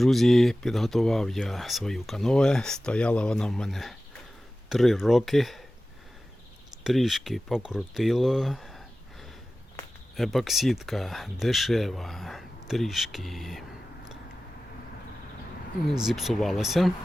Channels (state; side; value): normal; both; correlation 0.96